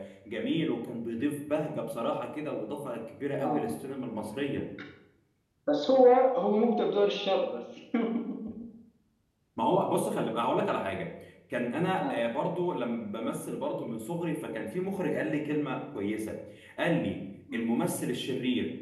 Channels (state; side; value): identical; both; correlation 1.00